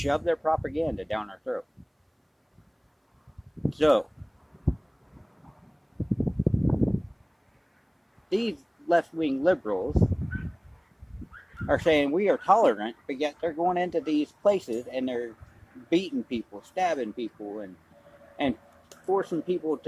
their propaganda down our throat. So, these left-wing liberals are saying we are tolerant, but yet they're going into these places and they're beating people, stabbing people, and forcing people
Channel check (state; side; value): identical; both; correlation 1.00